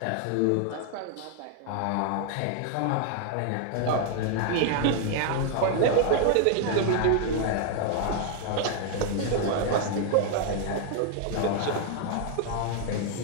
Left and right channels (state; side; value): different; both; correlation 0.00